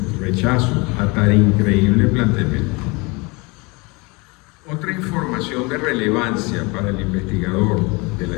rechazo a tan increíble planteamiento. Otra información información de relevancia para el investigador de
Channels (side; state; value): right; quieter; 27.1 dB